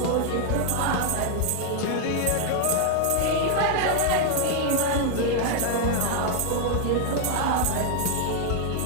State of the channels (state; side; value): different; both; correlation 0.00